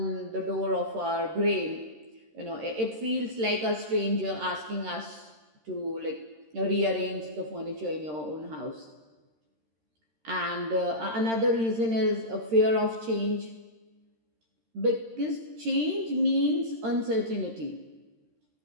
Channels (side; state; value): left; late; 13 ms